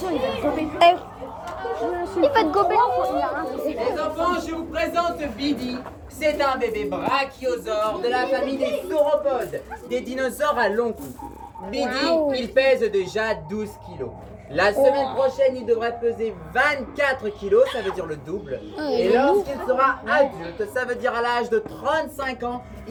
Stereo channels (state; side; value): identical; both; correlation 1.00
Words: Il va te gober. Les enfants, je vous présente Bidi. C'est un bébé brachiosaure de la famille des sauropodes, des dinosaures à long cou. Bidi, il pèse déjà 12 kilos. La semaine prochaine, il devrait peser 24 kilos, ça veut dire le double. Et lorsqu'il sera adulte, ça veut dire à l'âge de 35 ans,